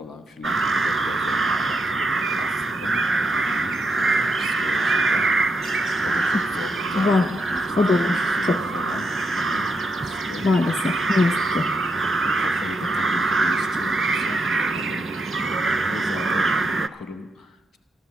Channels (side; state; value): both; normal; correlation 0.81